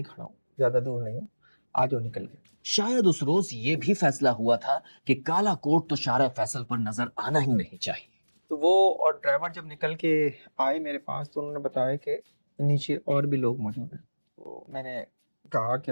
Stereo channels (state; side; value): inverted; both; correlation -1.00